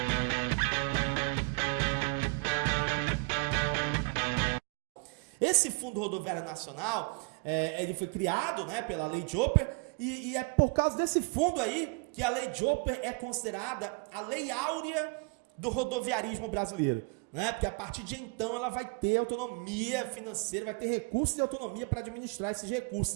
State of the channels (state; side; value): quieter; left; 32.3 dB